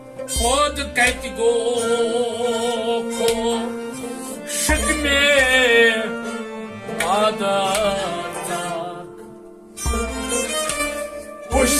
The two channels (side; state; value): both; identical; correlation 1.00